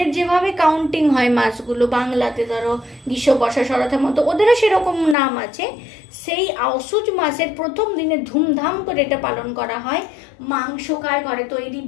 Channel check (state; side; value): drops out; right; at 5.2 s